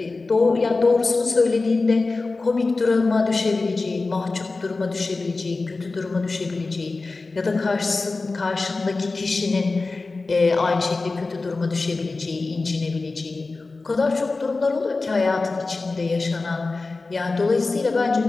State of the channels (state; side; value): quieter; right; 3.7 dB